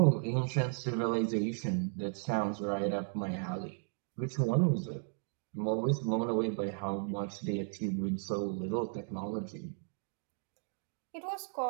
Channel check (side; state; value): left; silent; 54 dB below the other